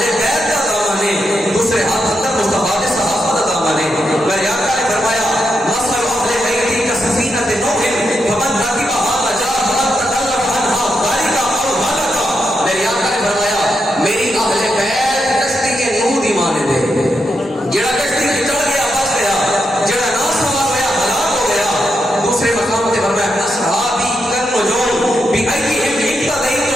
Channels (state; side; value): normal; both; correlation 0.83